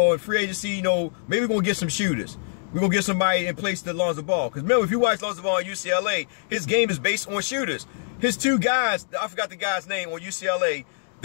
and free agency, you know, maybe we're going to get some shooters. We're going to get somebody in place to Lonzo Ball. Because remember, if you watch Lonzo Ball at UCLA, his game is based on shooters. His two guys, I forgot the guy's name on UCLA,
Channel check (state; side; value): silent; right; digital silence